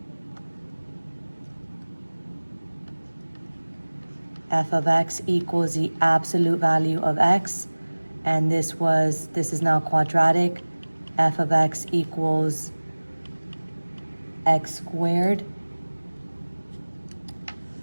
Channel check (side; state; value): both; inverted; correlation -1.00